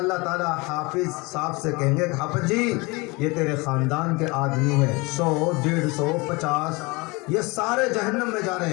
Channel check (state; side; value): quieter; right; 25.6 dB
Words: تعالیٰ حافظ صاحب سے کہیں گے کہ حافظ جی یہ تیرے خاندان کے آدمی ہیں، 100 150 50 یہ سارے جہنم میں جا رہے